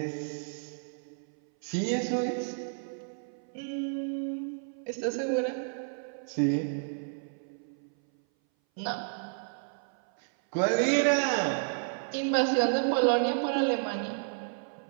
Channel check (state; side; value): silent; left; 57 dB below the other